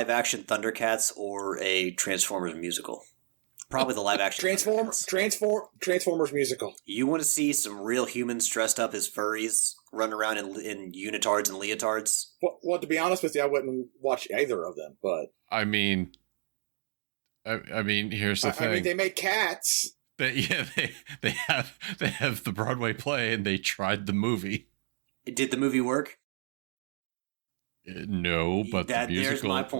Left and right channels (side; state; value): left; silent; 58 dB below the other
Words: Thundercats or a Transformers musical. Probably the live-action Transformers musical. You want to see some real humans dressed up as furries run around in unitards and leotards? Well, to be honest with you, I wouldn't watch either of them. But I mean, here's the thing. I mean, they make cats. They have the Broadway play, and they tried the movie. Did the movie work? No, but the musical, my